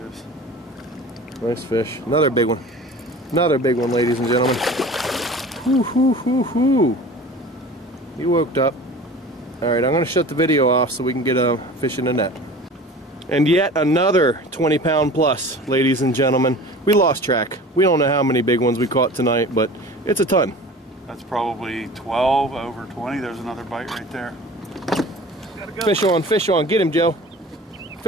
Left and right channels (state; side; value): normal; both; correlation 0.40